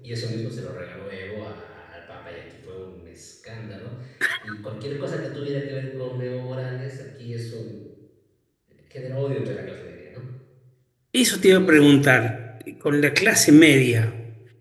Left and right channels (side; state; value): both; identical; correlation 1.00